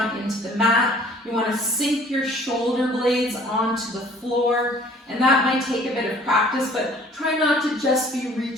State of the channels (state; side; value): normal; both; correlation 0.53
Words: into the mat. You want to sink your shoulder blades onto the floor, and that might take a bit of practice, but try not to just be